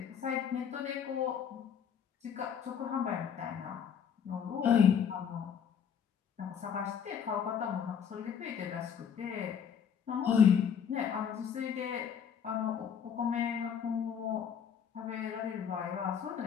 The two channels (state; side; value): quieter; right; 7.7 dB